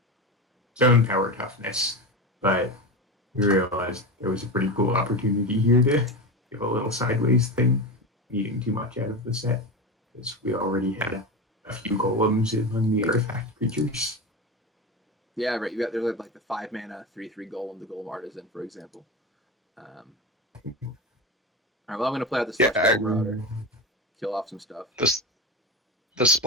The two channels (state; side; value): normal; both; correlation 0.21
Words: zone power toughness, but We realized there was a pretty cool opportunity here to give a little sideways thing, needing too much out of the set, because we already had a few golems among the artifact creatures. Yeah, right. There's like the 5 mana 3/3 golem, the golem artisan, for example. All right, well, I'm going to play out the Celestial Marauder, kill off some stuff. The